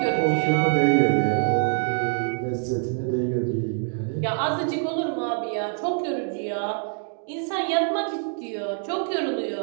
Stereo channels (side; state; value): left; silent; 58 dB below the other